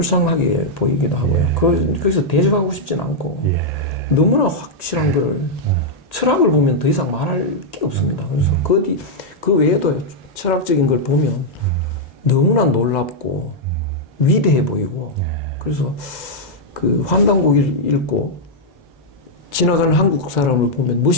보이기도 하고요. 거기서 대적하고 싶진 않고 너무나 확실한 거를 철학을 보면 더 이상 말할 게 없습니다. 그래서 그 외에도 철학적인 걸 보면 너무나 놀랍고 위대해 보이고 그래서 환단고기를 읽고 지나가는 한국 사람을 보면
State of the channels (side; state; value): both; normal; correlation -0.04